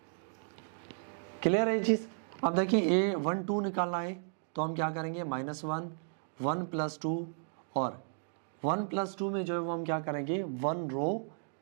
क्लियर है चीज। अब देखिए ये 1 2 निकालना है तो हम क्या करेंगे -1 1 + 2 और 1 + 2 में जो है वो हम क्या करेंगे 1 रो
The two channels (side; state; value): left; silent; digital silence